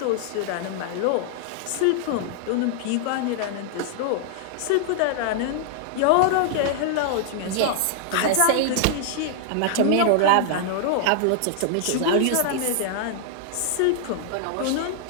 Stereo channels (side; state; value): both; different; correlation -0.01